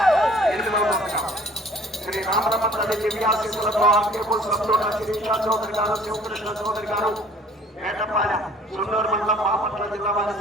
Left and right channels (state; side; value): normal; both; correlation 0.53